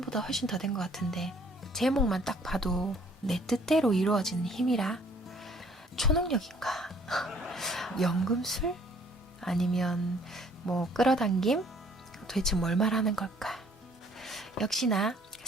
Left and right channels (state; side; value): normal; both; correlation 0.59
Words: 훨씬 더 된 것 같은데 제목만 딱 봐도 내 뜻대로 이루어지는 힘이라 초능력인가? 연금술? 아니면 뭐 끌어당김? 도대체 뭘 말하는 걸까? 역시나